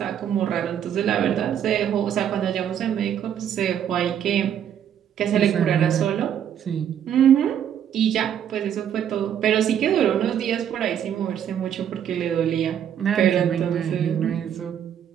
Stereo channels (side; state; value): left; quieter; 9.4 dB